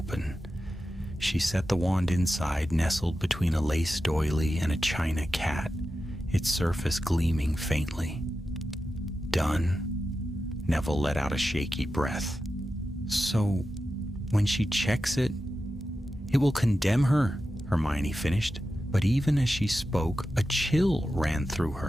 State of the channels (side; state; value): both; normal; correlation 0.91